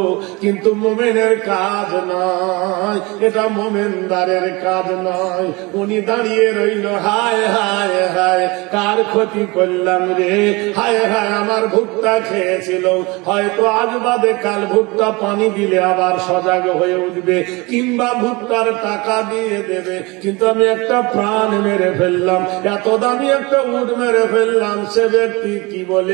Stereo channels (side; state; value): left; quieter; 25.0 dB